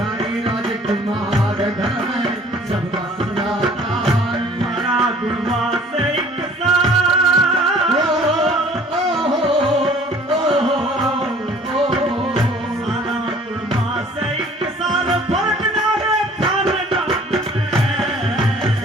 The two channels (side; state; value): both; normal; correlation 0.52